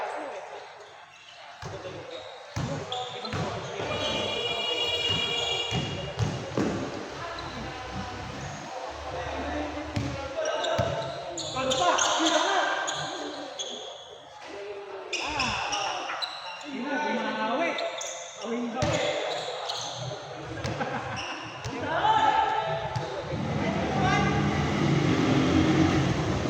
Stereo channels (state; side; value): identical; both; correlation 1.00